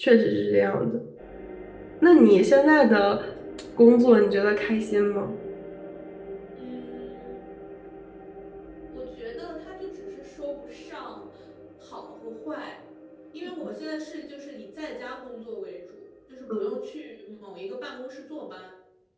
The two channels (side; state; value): both; identical; correlation 1.00